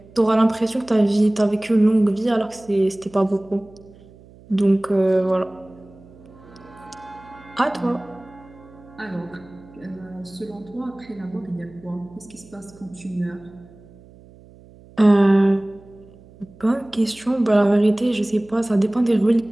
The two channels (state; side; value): noise; right; hum, 24 dB below the sound